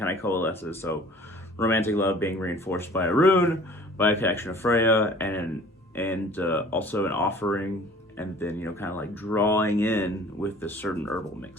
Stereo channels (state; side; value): normal; both; correlation 0.49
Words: of coalesces. So romantic love being reinforced by a rune, by a connection of Freya, and also an offering, and then, you know, kind of like drawing in with this certain herbal